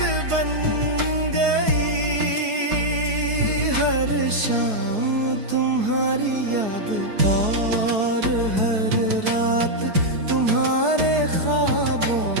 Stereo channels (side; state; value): left; late; 4.7 ms